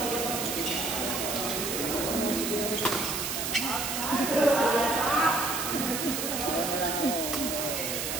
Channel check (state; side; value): noise; right; hiss, 2 dB below the sound